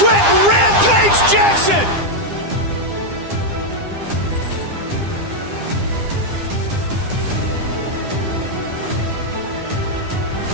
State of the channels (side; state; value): left; late; 9.9 ms